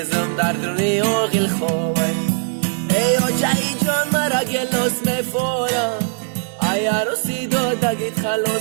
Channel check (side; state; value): left; silent; 66 dB below the other